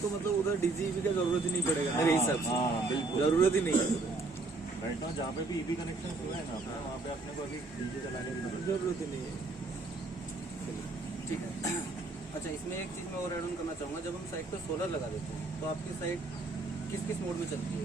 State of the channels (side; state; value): left; quieter; 3.4 dB